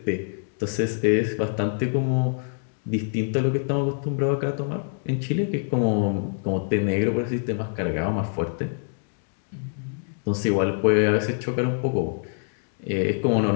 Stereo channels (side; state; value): right; silent; digital silence